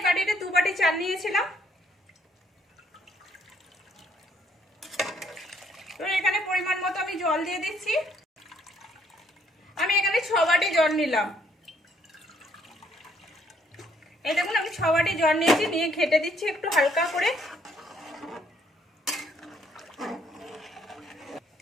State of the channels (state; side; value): normal; both; correlation 0.67